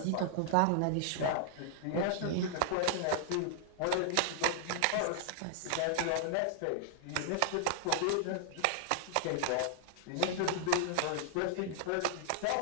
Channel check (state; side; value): different; both; correlation -0.01